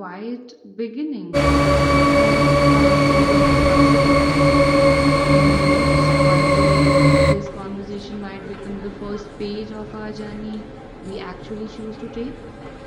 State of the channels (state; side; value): identical; both; correlation 1.00